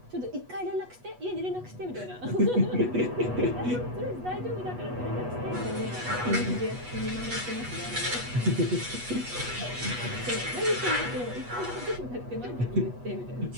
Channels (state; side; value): late; left; 8.2 ms